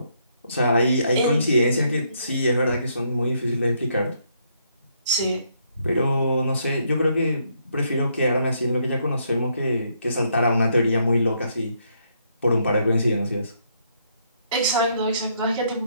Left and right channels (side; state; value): both; inverted; correlation -0.73